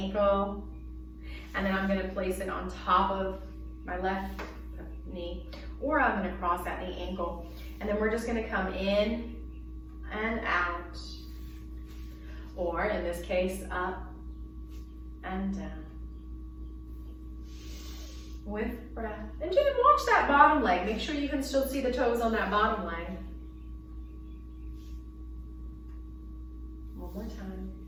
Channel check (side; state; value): both; identical; correlation 1.00